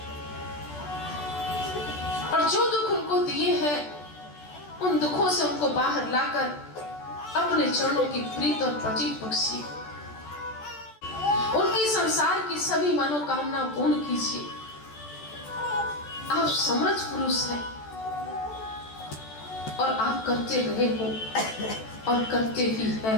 और जो दुख उनको दिए हैं उन दुखों से उनको बाहर लाकर अपने चरणों की प्रीत और प्रतीत बख्शी, उनकी संसार की सभी मनोकामना पूर्ण कीजिए। आप समर्थ पुरुष हैं और आप करते रहे हो और करते ही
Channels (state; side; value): late; right; 14 ms